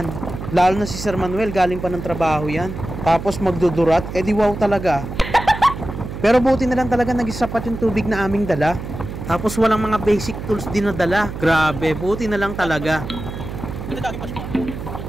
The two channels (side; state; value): right; noise; hum, 8 dB below the sound